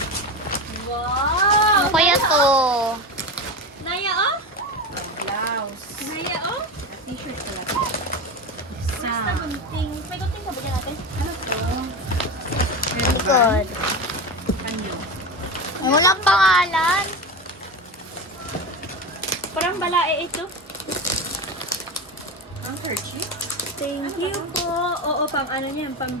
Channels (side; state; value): both; normal; correlation 0.22